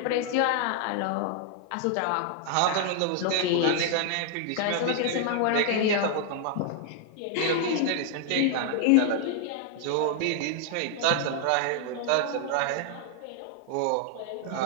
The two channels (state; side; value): different; both; correlation 0.00